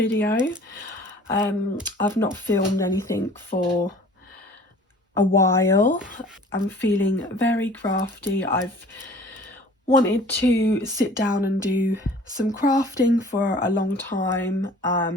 I've not filmed anything for a while. I'm feeling very crafty. I've wanted to sit down and do some crafting for a long time,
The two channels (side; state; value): both; normal; correlation 0.48